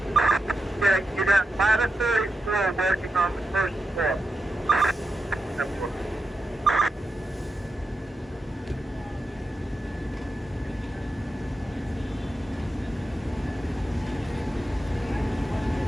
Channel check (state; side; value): normal; both; correlation 0.88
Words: Yeah, you got ladder 34 working on the first floor.